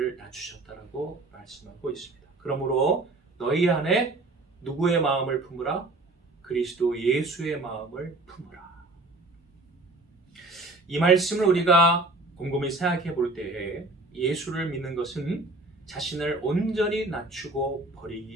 낮추셨다라고 말씀하고 있습니다. 그러므로 너희 안에 누구의 마음을 품으라? 그리스도 예수의 마음을 품으라. 이 말씀을 우리가 곰곰이 생각해 볼 때에 예수를 믿는 것은 자신을 온전히 낮추고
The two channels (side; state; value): left; quieter; 3.0 dB